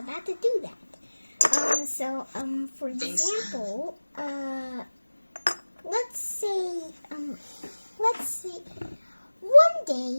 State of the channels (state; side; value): inverted; both; correlation -1.00